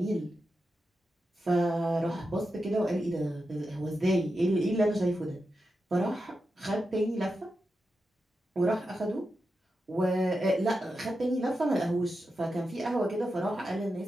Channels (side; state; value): both; normal; correlation 0.89